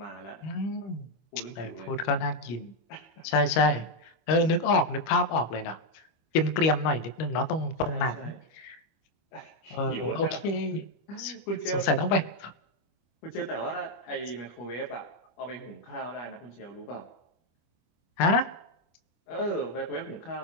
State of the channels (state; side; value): late; right; 25 ms